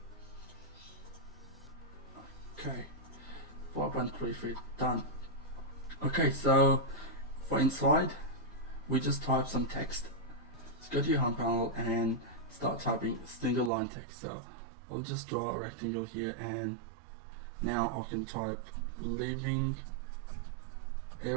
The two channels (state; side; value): drops out; left; at 13.7 s